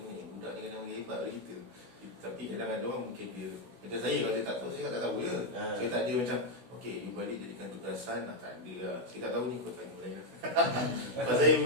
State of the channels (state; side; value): late; left; 16 ms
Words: budak ni kadang lagi hebat dari kita. Tapi kadang ada orang mungkin dia macam saya kalau dia tak tahu saya tak tahu je. Saya tak ada macam okey you balik jadikan tugasan tak ada lah. Saya tak tahu ni kau tanya lain lah. Pasal saya